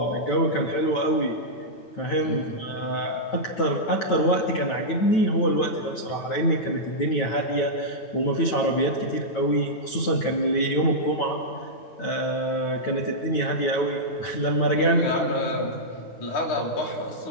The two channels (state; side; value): late; right; 9.2 ms